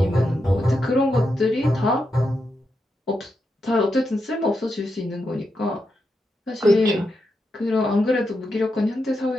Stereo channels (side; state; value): both; normal; correlation 0.85